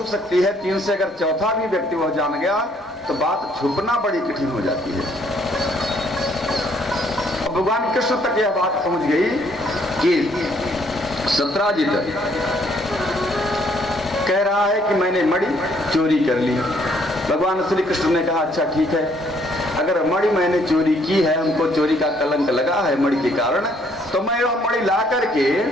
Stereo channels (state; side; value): normal; both; correlation 0.66